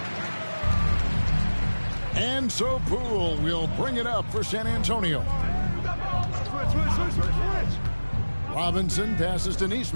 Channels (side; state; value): both; inverted; correlation -1.00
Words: And so Poole will bring it up for San Antonio. Robinson passes to